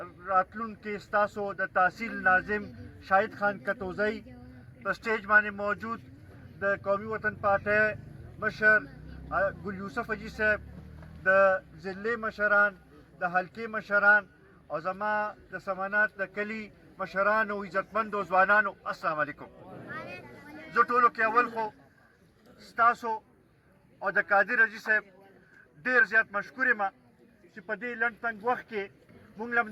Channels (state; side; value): identical; both; correlation 1.00